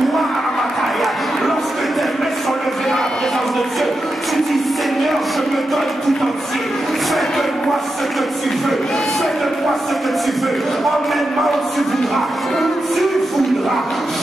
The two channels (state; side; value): normal; both; correlation 0.88